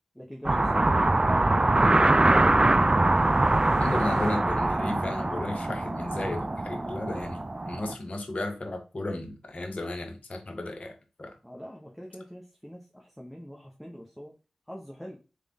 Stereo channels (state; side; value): normal; both; correlation 0.96